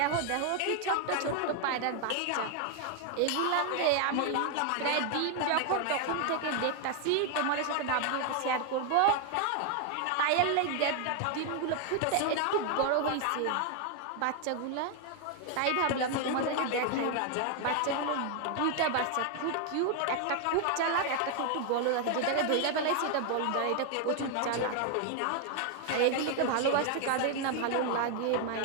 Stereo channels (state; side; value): different; both; correlation 0.00